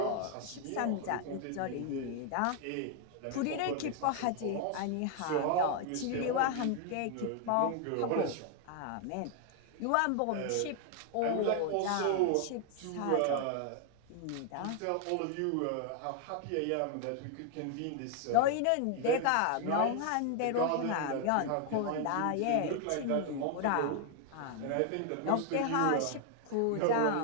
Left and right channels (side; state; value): both; different; correlation 0.00